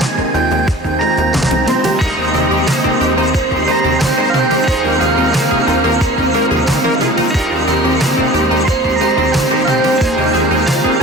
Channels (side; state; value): both; normal; correlation 0.44